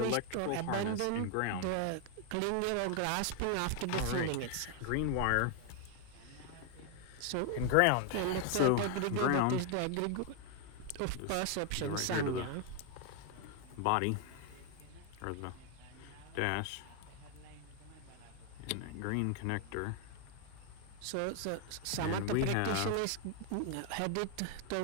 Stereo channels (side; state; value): both; different; correlation 0.01